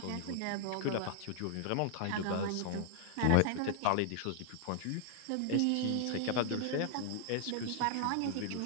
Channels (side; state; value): both; different; correlation -0.01